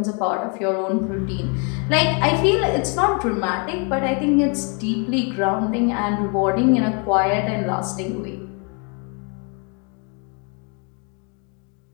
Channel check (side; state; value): right; quieter; 36.1 dB